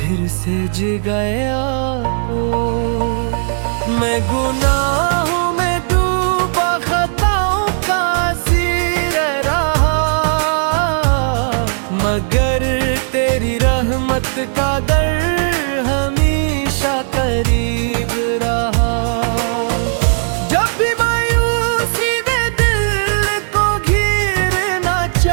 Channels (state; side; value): silent; left; digital silence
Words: से जगाया। मैं गुनाहों में डूबा खताओं का असीर रहा, मगर तेरी रहमत का दर हमेशा करीब रहा। जब भी मायूसी ने दिल को घिरना